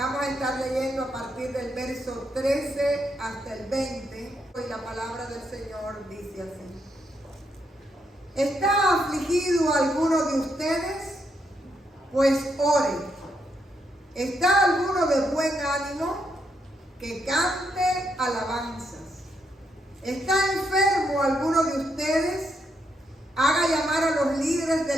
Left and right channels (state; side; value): normal; both; correlation 0.79